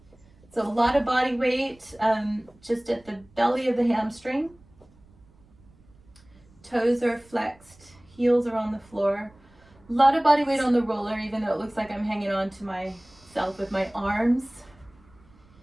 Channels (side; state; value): right; noise; rumble, 28 dB below the sound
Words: So a lot of body weight just at the belly of the hamstring. Toes are flexed, heels are on the floor. A lot of body weight on the roller, even though it looks like I'm hanging on to myself with my arms.